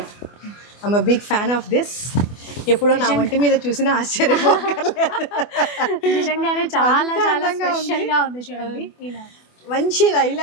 I'm a big fan of this. ఎప్పుడో నా వంటి మీద చూసినా ఆశ్చర్యపోకర్లేదు. నిజంగానే చాలా చాలా స్పెషల్ గా ఉంది చూడండి. ఇలా మంచి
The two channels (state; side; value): late; right; 24 ms